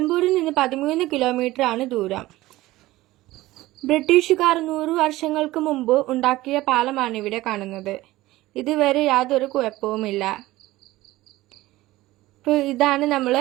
നിന്ന് 13 കിലോമീറ്റർ ആണ് ദൂരം. ബ്രിട്ടീഷുകാർ 100 വർഷങ്ങൾക്ക് മുമ്പ് ഉണ്ടാക്കിയ പാലമാണ് ഇവിടെ കാണുന്നത്. ഇതുവരെ യാതൊരു കുഴപ്പവുമില്ല. ഇതാണ്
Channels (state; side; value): quieter; left; 17.6 dB